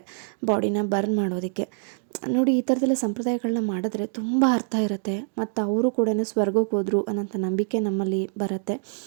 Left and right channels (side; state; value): left; silent; 55 dB below the other